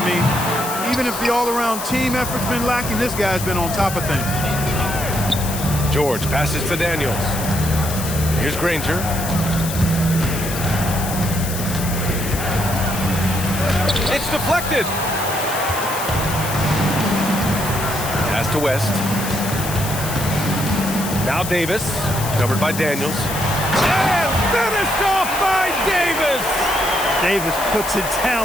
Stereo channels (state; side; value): noise; left; hiss, 7 dB below the sound